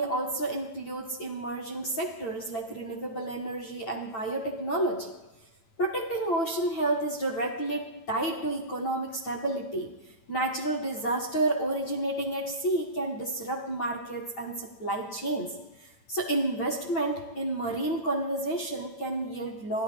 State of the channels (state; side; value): late; right; 9.0 ms